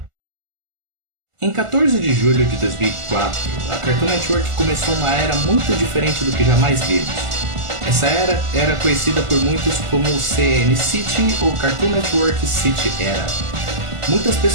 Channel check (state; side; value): late; left; 1.4 ms